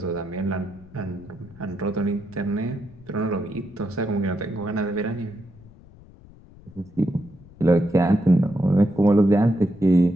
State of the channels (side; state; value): left; noise; rumble, 22 dB below the sound